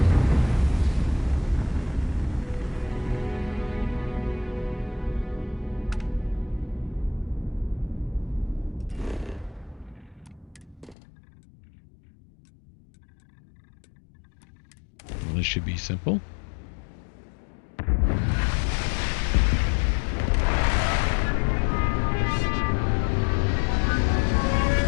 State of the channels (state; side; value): drops out; right; at 11.0 s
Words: Well, this should be simple.